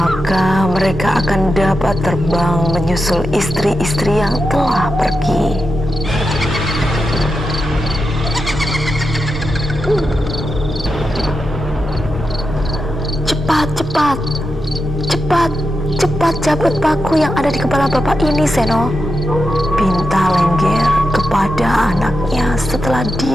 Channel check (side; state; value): both; normal; correlation 0.88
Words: mereka akan dapat terbang menyusul istri-istri yang telah pergi. Cepat, cepat, cepat, cepat cabut paku yang ada di kepala bapak ini, Seno, pinta Lengger kepada anaknya setelah